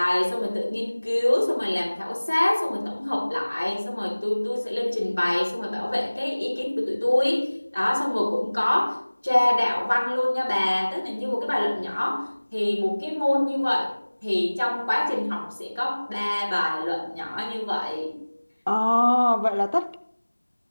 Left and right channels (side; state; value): both; inverted; correlation -1.00